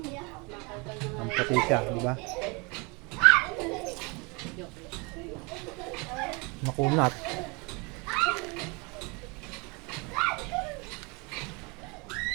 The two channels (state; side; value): quieter; left; 29.2 dB